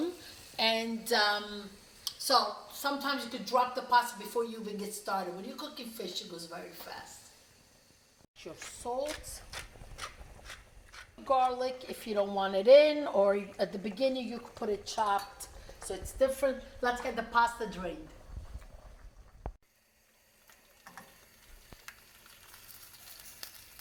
And so sometimes you could drop the pasta before you even get started. When you're cooking fish, it goes very fast. Your salt. Garlic if you don't want it in, or at the beginning you could put it chopped, so it's different. Let's get the pasta drained.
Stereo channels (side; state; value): both; identical; correlation 1.00